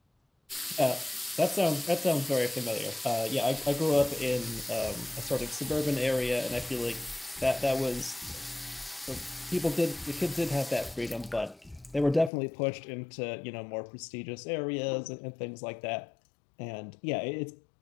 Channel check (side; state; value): right; drops out; at 12.3 s